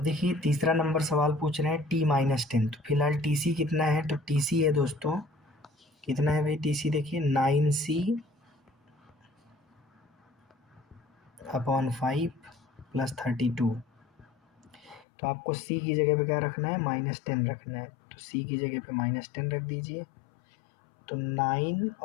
देखिए तीसरा नंबर सवाल पूछ रहे हैं T-10, तो फिलहाल TC कितना है, तो TC है दोस्तों, कितना है भाई TC, देखिए 9C अपॉन 5 प्लस 32, तो आपको C की जगह पे क्या रखना है -10 रखना है, तो C की जगह पे -10 रख दीजिए। तो 9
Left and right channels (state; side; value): drops out; right; at 15.1 s